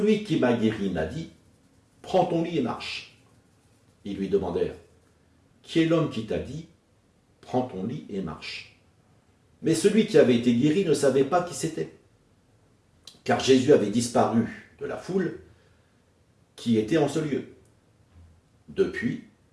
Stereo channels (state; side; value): identical; both; correlation 1.00